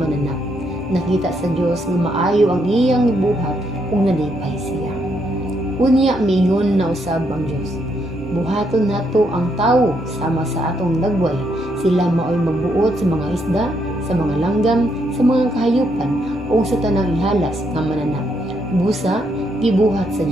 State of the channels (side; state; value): both; normal; correlation 0.76